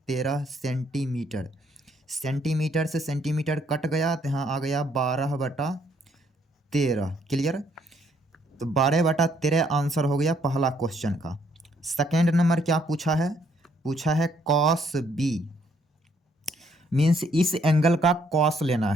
13 centimetre. Centimetre से सेंटीमीटर कट गया तो यहाँ आ गया 12 बटा 13। क्लियर। तो 12 बटा 13 आंसर हो गया पहला क्वेश्चन का। सेकेंड नंबर क्या पूछा है? पूछा है कॉस बी, मीन्स इस एंगल का कॉस लेना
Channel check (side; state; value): both; normal; correlation 0.69